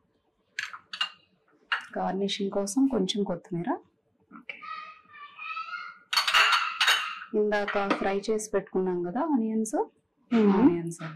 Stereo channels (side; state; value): both; identical; correlation 1.00